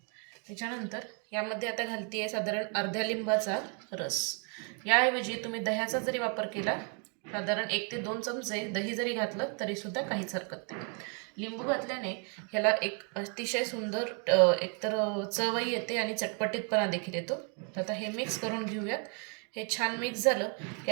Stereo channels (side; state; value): left; quieter; 39.0 dB